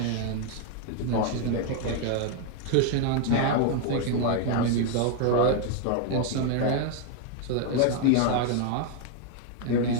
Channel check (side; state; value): both; different; correlation 0.00